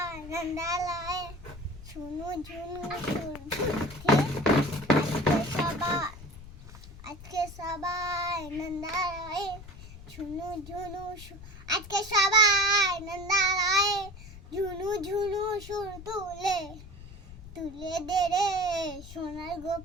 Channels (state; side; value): noise; left; rumble, 16 dB below the sound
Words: নন্দালয়ে শুনু ঝুনু আজকে সবাই নন্দালয়ে শুনু ঝুনু আজকে সবাই নন্দালয়ে ঝুনু ঝুনু সুর তুলে তুলে দে রে সোনার